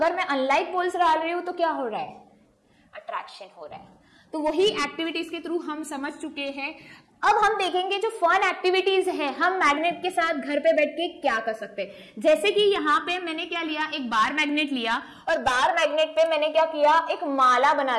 मैं अनलाइक पोल्स डाल रही हूं तो क्या हो रहा है, अट्रैक्शन हो रहा है। तो वही एक्टिविटीज के थ्रू हम समझ चुके हैं। अब हम देखेंगे जो फन एक्टिविटीज है, हम मैग्नेट के साथ घर पे बैठ के क्या कर सकते हैं। जैसे कि यहाँ पे मैंने क्या लिया, एक बार मैग्नेट लिया और बार मैग्नेट पे मैंने क्या किया, एक माला बना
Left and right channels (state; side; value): identical; both; correlation 1.00